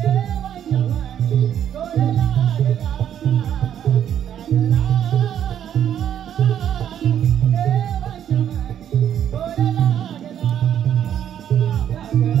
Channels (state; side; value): quieter; left; 9.8 dB